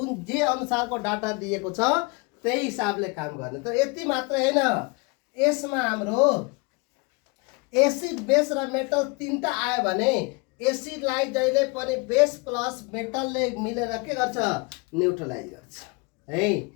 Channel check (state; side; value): quieter; right; 29.1 dB